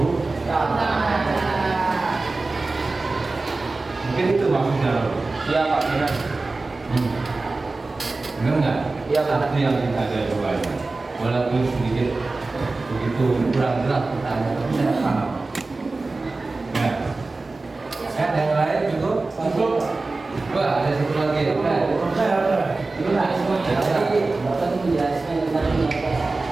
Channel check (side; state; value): left; quieter; 3.5 dB